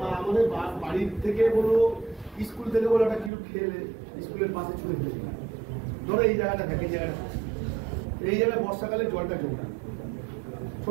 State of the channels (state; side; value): drops out; left; at 3.3 s